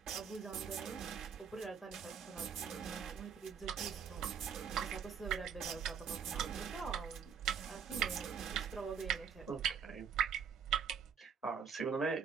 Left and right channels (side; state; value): left; quieter; 7.1 dB